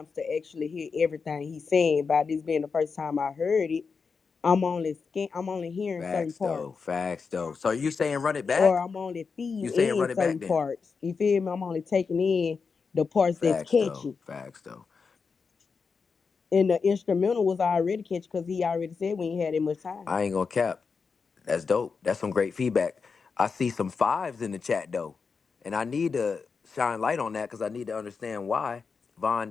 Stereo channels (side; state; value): right; quieter; 5.2 dB